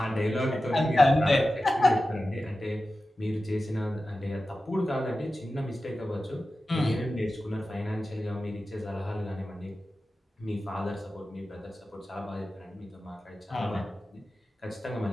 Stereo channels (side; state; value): both; normal; correlation 0.94